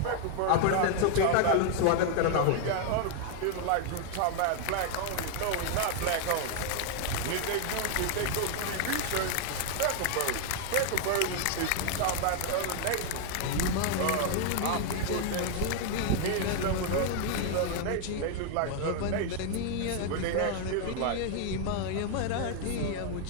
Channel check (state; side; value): different; both; correlation 0.00